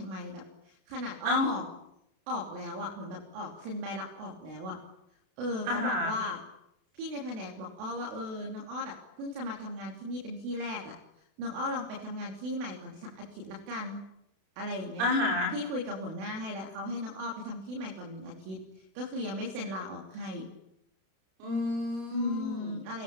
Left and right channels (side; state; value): left; late; 32 ms